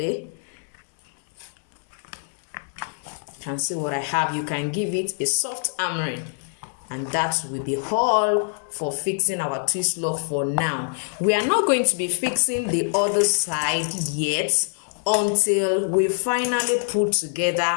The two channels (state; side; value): silent; right; digital silence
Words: You can see what I have. You can give it a soft hammering, and that will be all for fixing our twist lock for now. We are not going to be fixing the other side yet until we finally put